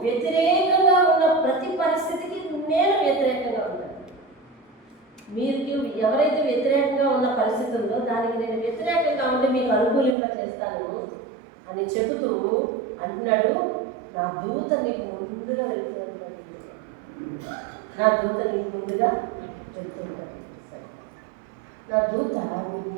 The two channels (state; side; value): drops out; left; at 10.2 s